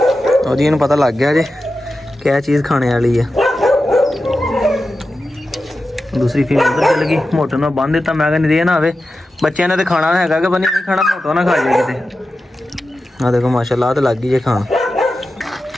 और जी पता लग गया जी क्या चीज़ खाने वाली है। दूसरी फीमेल उधर चल गई मोटो ने बंद दिता मैं नहीं दे ना आवे बच्चों ने तो खाना है कि बनी नहीं खाना मोटो ना खा जाए कितने। हाँ देखो माशाल्लाह तो लग गई है खान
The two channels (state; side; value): normal; both; correlation 0.92